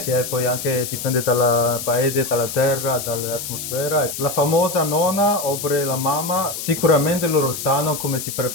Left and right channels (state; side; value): noise; left; hiss, 7 dB below the sound